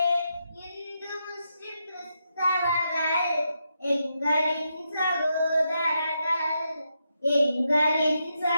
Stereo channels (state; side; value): inverted; both; correlation -0.83